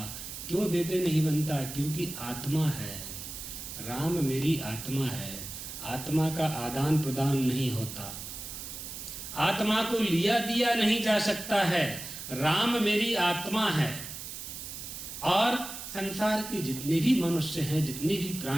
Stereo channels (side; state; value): right; noise; hiss, 9 dB below the sound